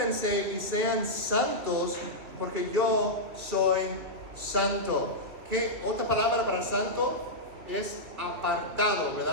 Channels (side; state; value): left; late; 2.8 ms